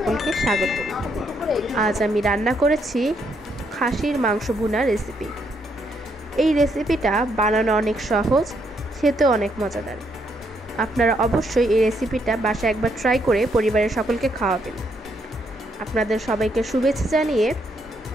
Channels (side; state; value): both; normal; correlation 0.74